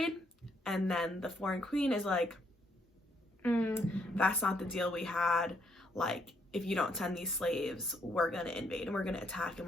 And then the foreign queen is like, that's not the deal we had. Like, if you don't send these slaves, we're gonna invade and we're gonna attack and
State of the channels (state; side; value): normal; both; correlation 0.72